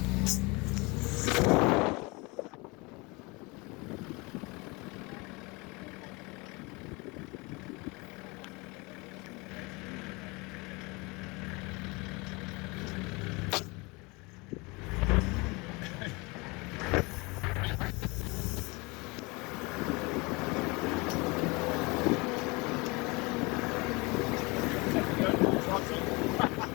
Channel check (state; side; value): quieter; right; 26.4 dB